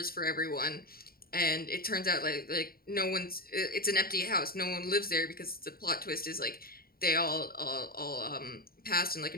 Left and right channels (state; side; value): late; right; 0.43 ms